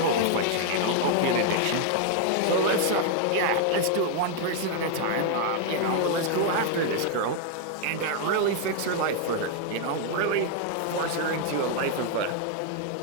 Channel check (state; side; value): different; both; correlation 0.00